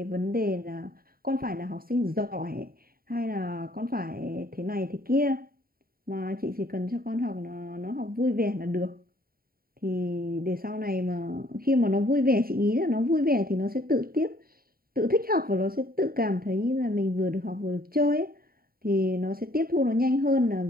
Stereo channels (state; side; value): late; left; 0.43 ms